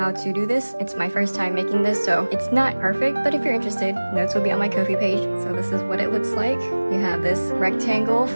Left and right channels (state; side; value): inverted; both; correlation -1.00